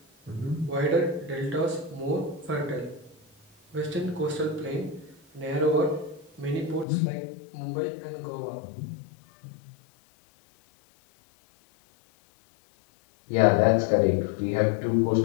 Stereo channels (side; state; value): right; drops out; at 6.9 s